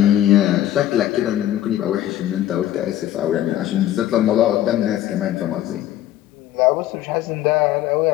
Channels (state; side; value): quieter; right; 12.8 dB